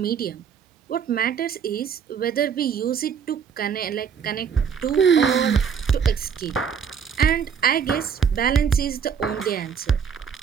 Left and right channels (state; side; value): quieter; left; 7.1 dB